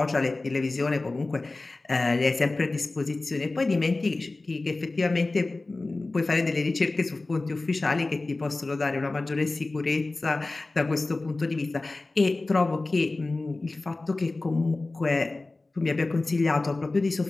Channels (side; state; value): right; quieter; 3.2 dB